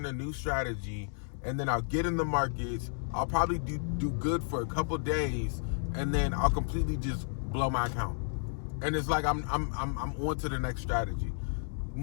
a new strategy, and then I'll get in the markets. I'll probably do good for a couple days, and then I'll completely just blow my account. And it's like I'm on to the next strategy.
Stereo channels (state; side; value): silent; right; digital silence